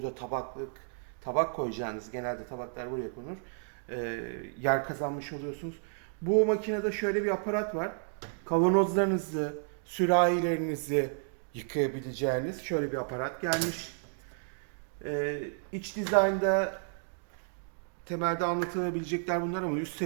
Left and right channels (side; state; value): left; silent; 57 dB below the other